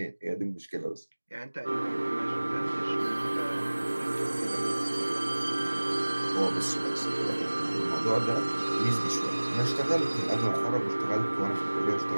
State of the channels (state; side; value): inverted; both; correlation -1.00